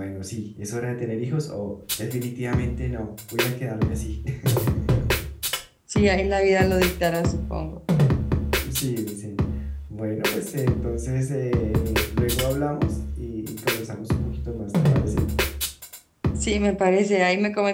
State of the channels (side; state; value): both; identical; correlation 1.00